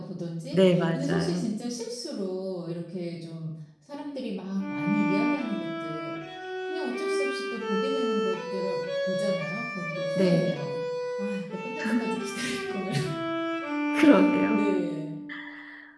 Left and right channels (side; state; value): both; identical; correlation 1.00